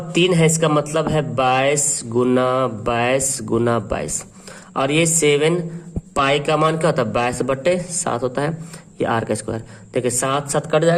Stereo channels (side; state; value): both; identical; correlation 1.00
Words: है, इसका मतलब है 22 × 22, और ये 7 पाई का मान क्या होता है, 22/7 होता है, ये r का स्क्वायर। देखिए 7 7 कट